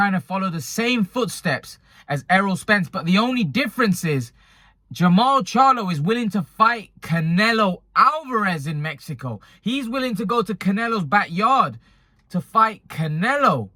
to follow the same footsteps as Errol Spence, but the only difference is Jermall Charlo is willing to fight Canelo Alvarez in Mexico. He's willing to go to Canelo's backyard to fight Canelo.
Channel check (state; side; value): identical; both; correlation 1.00